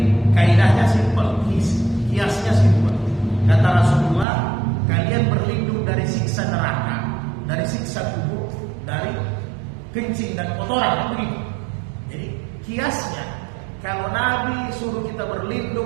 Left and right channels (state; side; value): drops out; left; at 4.2 s